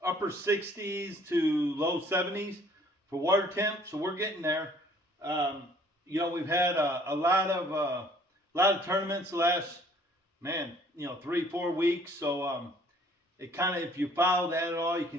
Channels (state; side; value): normal; both; correlation 0.57